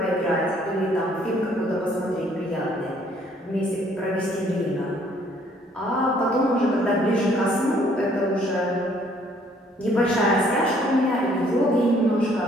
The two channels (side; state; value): both; normal; correlation 0.62